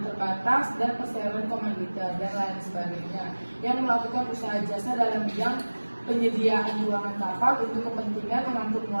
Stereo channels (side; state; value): both; inverted; correlation -1.00